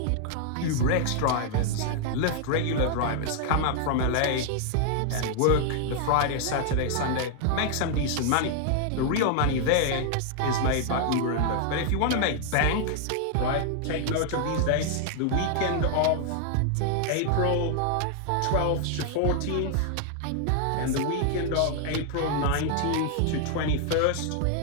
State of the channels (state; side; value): different; both; correlation 0.00